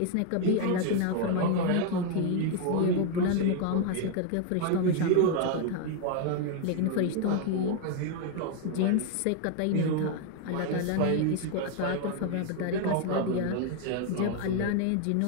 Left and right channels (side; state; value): both; different; correlation 0.00